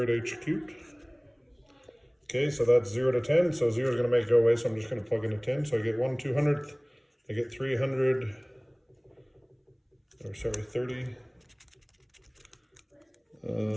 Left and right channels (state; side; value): identical; both; correlation 1.00